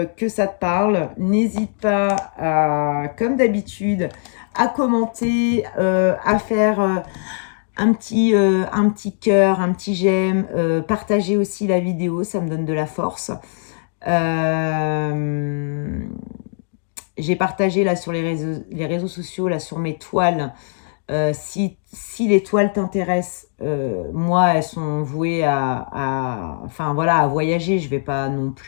que ça te parle. N'hésite pas, comme d'habitude, à commenter, à faire un petit cœur, un petit j'aime, partager aussi la vidéo, ça me donne de la force. J'ai partagé là sur les réseaux sociaux, là sur mes toiles. Si les toiles t'intéressent, moi, elles sont vouées enfin, voilà, à voyager. Je ne vais pas non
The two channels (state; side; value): silent; right; digital silence